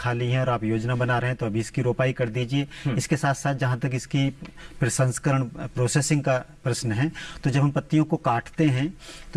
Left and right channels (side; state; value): both; identical; correlation 1.00